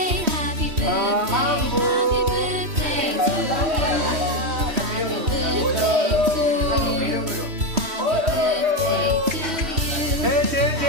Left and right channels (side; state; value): left; late; 3.1 ms